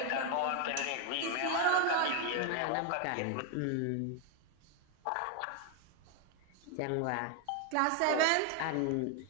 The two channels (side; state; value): both; different; correlation 0.01